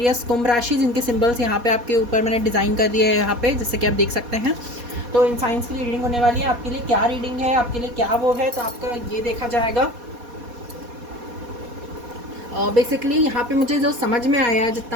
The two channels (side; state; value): left; late; 4.2 ms